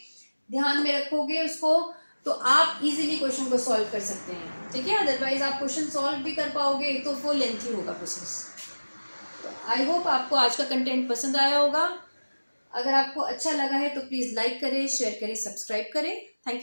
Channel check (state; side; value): inverted; both; correlation -1.00